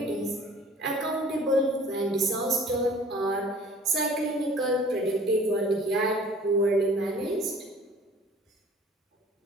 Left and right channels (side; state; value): both; normal; correlation 0.49